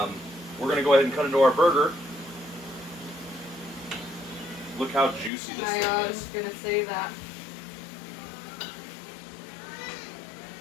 going to go ahead and cut into our burger. Look how juicy this thing is. I was going to say that.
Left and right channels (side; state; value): right; drops out; at 5.3 s